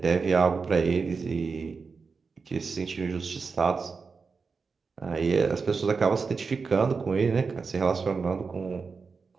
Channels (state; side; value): quieter; left; 4.9 dB